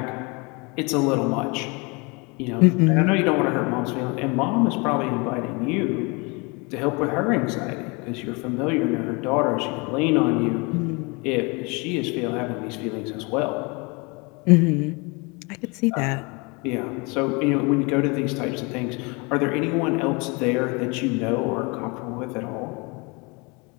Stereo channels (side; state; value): right; quieter; 29.0 dB